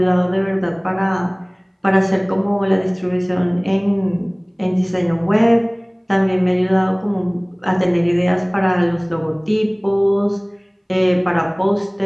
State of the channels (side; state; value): both; identical; correlation 1.00